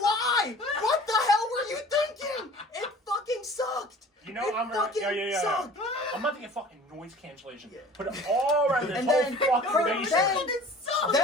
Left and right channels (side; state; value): both; normal; correlation 0.45